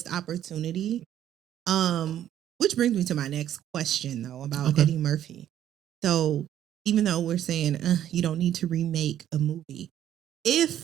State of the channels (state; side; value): quieter; left; 11.2 dB